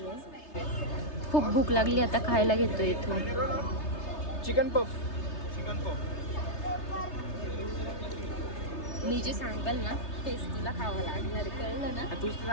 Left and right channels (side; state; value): right; late; 3.3 ms